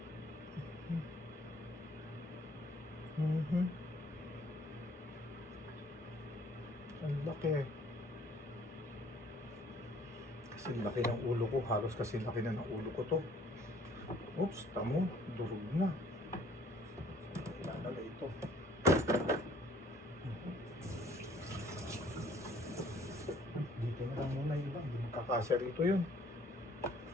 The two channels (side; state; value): both; normal; correlation 0.58